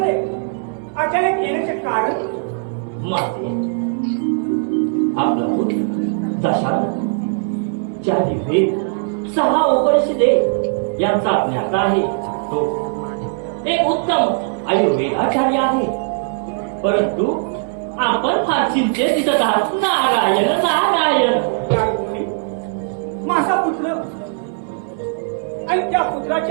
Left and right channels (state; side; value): silent; left; 63 dB below the other